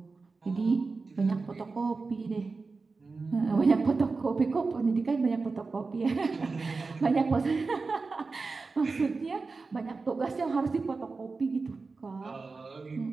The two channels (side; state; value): left; quieter; 4.1 dB